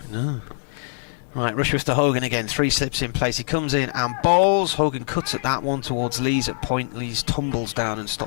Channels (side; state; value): right; silent; digital silence